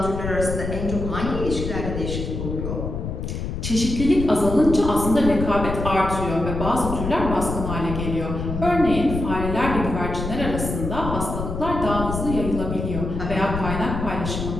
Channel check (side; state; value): left; noise; rumble, 5 dB below the sound